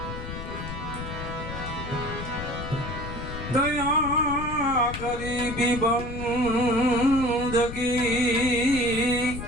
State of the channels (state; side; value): noise; left; rumble, 8 dB below the sound